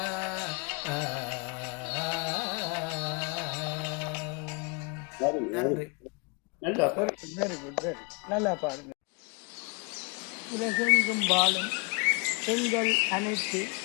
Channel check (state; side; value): quieter; right; 32.5 dB